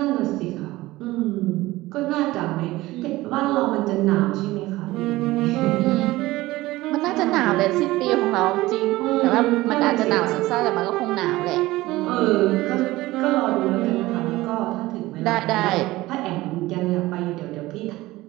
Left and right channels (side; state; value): left; quieter; 18.4 dB